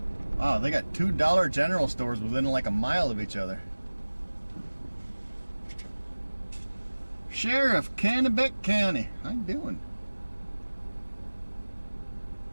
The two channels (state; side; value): inverted; both; correlation -1.00